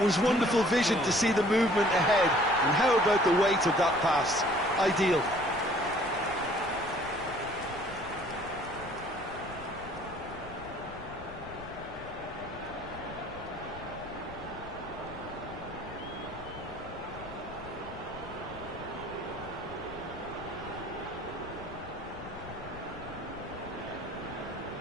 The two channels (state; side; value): noise; left; rumble, 15 dB below the sound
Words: was wonderful vision to see the movement ahead, and how about the weight of that pass? Ideal.